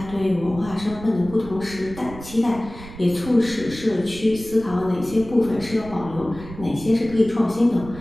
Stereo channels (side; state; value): right; noise; rumble, 14 dB below the sound